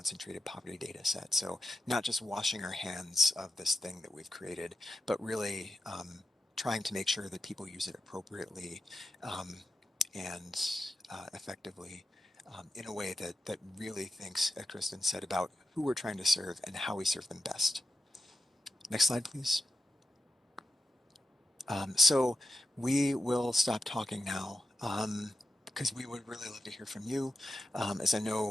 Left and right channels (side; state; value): both; normal; correlation 0.90